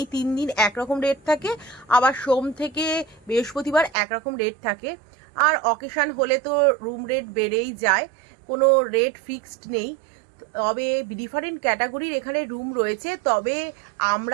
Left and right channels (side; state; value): left; drops out; at 3.9 s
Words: 3 দিন একরকম রেট থাকে, আবার সোম থেকে বৃহস্পতিবার একরকম রেট থাকে। আর অকেশান হলে তো রুম রেট বেড়েই যায়, কোনো রেট ফিক্সড নেই। তবে ডিফারেন্ট ক্যাটাগরির এখানে রুম রয়েছে। তবে